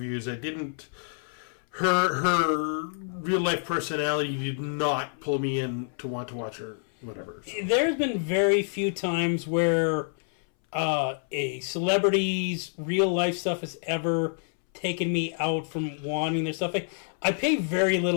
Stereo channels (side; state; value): right; silent; 60 dB below the other